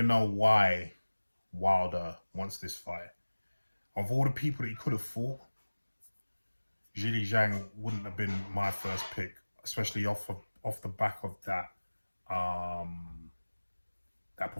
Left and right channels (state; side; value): inverted; both; correlation -1.00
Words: know why Wilder wants this fight. Of all the people that he could have fought, Zhilei Zhang wouldn't have been my first pick, especially off the back of that that